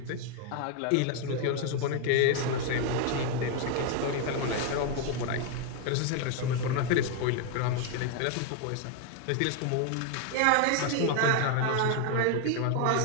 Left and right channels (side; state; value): both; different; correlation 0.01